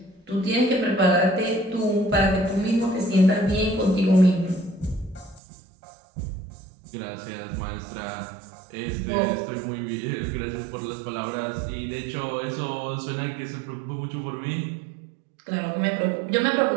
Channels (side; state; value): left; drops out; at 5.4 s